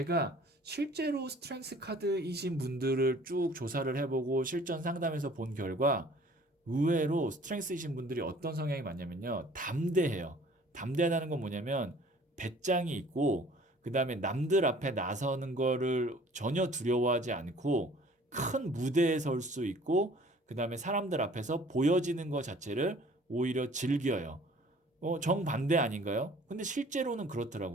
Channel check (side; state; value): both; normal; correlation 0.52